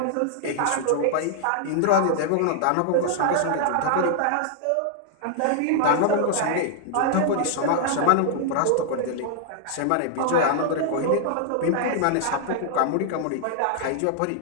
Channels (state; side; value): different; both; correlation -0.01